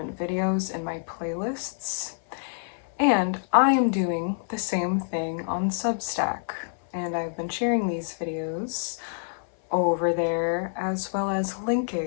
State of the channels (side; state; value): right; silent; 60 dB below the other